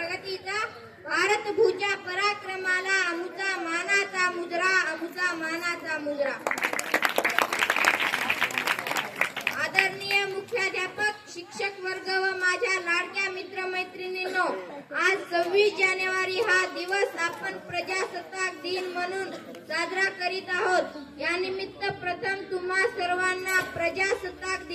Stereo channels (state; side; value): identical; both; correlation 1.00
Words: भारत भूच्या पराक्रमाला अमुचा मानाचा मुजरा, अमुचा मानाचा मुजरा. आदरणीय मुख्याध्यापक, शिक्षक वर्ग व माझ्या लाडक्या मित्रमैत्रिणींनो, आज 26 जानेवारी हा दिवस आपण प्रजासत्ताक दिन म्हणून साजरा करीत आहोत. या निमित्त प्रथम तुम्हा सर्वांना प्रजासत्ताक